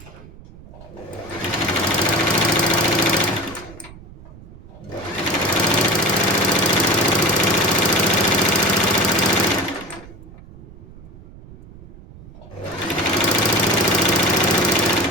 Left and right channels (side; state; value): right; noise; rumble, 19 dB below the sound